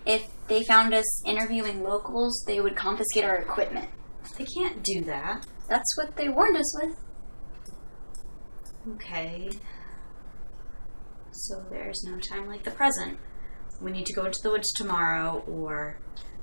if they found us interviewing locals, they would confiscate our equipment. They can't do that. That's what they warned us with. Okay. So there's no time like the present. We need to go into the woods tomorrow or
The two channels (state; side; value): inverted; both; correlation -1.00